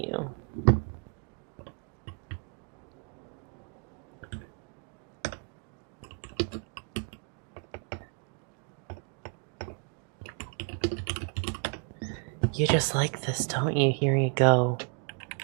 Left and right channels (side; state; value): left; quieter; 38.2 dB